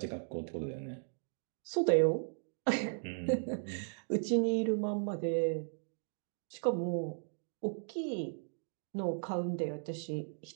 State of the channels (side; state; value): left; silent; digital silence